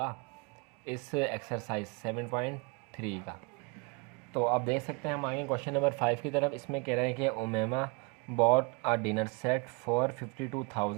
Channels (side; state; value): left; quieter; 29.7 dB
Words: इस एक्सरसाइज 7.3 का। तो आप देख सकते हैं हम आगे क्वेश्चन नंबर 5 की तरफ। इसमें कह रहे हैं कि Umema bought a dinner set for